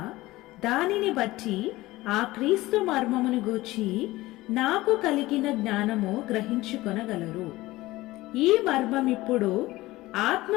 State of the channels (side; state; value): right; quieter; 18.5 dB